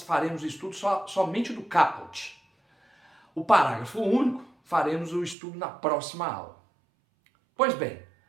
faremos o estudo somente do caput. O parágrafo único faremos o estudo na próxima aula. Pois bem,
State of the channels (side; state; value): left; drops out; at 5.4 s